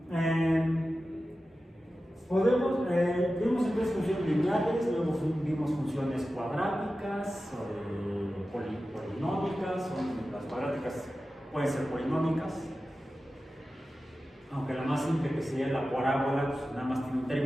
Vimos entonces funciones lineales, luego vimos funciones cuadráticas, polinómicas, las cuadráticas pueden ser polinómicas, aunque la más simple que sería la parábola, pues nada más tiene un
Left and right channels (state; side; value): normal; both; correlation 0.94